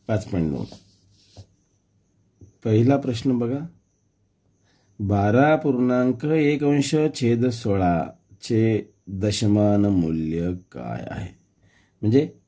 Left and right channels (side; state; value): both; identical; correlation 1.00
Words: 5.9. पहिला प्रश्न बघा. 12.1 चे दशमान मूल्य काय आहे? म्हणजे